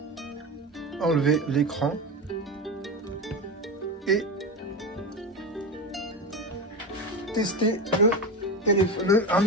enlever l'écran et tester un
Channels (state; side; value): normal; both; correlation 0.21